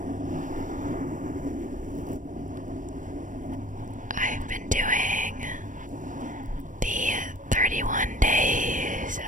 I've been doing the 31 days of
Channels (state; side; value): late; left; 0.38 ms